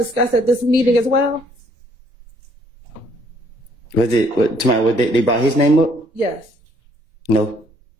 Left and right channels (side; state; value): left; late; 1.9 ms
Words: at this meeting as well? Was it, they brought his name up? Yes. No.